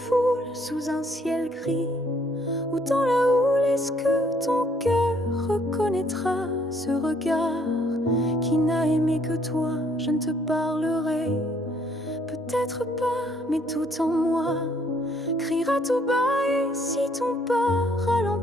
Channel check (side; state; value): both; normal; correlation 0.65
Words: sous un ciel gris, ou dans la houle, est-ce que ton cœur reconnaîtra ce regard qui n'a aimé que toi? Je ne te parlerai peut-être pas, mais tout en moi criera tout bas. Et si ton pas